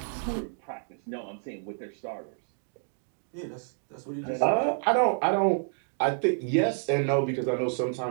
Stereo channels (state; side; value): silent; left; digital silence